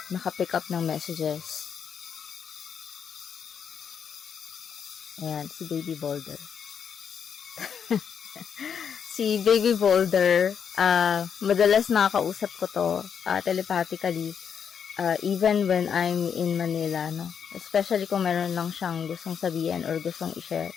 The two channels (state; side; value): quieter; right; 7.4 dB